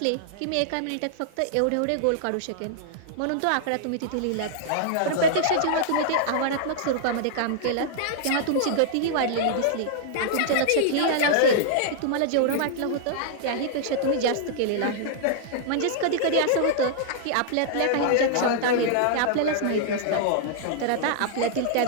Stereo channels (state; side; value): different; both; correlation -0.01